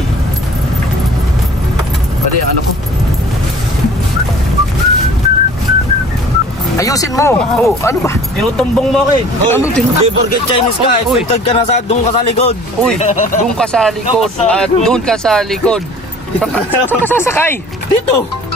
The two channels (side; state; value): both; normal; correlation 0.48